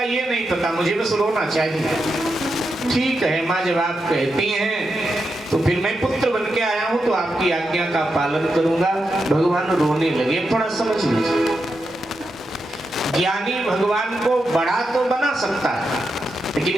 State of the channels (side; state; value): both; normal; correlation 0.86